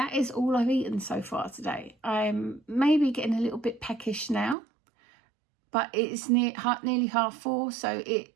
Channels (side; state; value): left; drops out; at 4.5 s